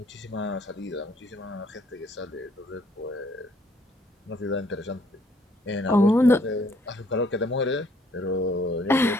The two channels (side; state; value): both; normal; correlation 0.64